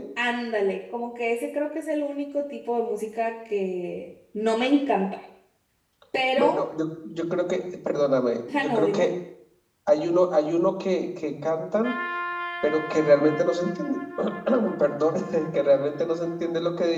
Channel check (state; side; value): identical; both; correlation 1.00